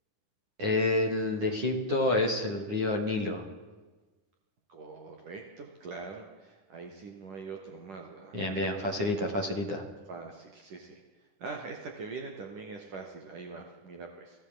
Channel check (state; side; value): late; left; 9.8 ms